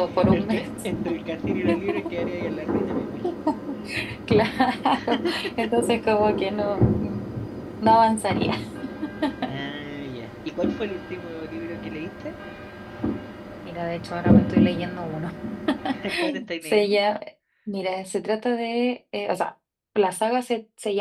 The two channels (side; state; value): both; identical; correlation 1.00